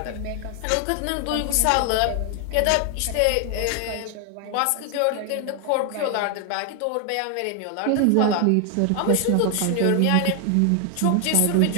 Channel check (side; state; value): both; different; correlation 0.00